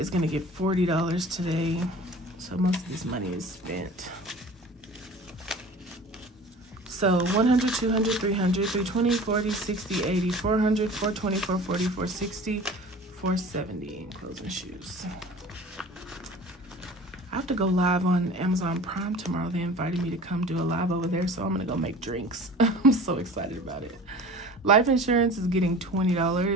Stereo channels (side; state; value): both; normal; correlation 0.42